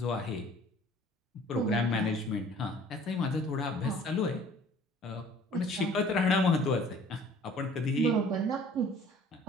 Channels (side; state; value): both; normal; correlation 0.51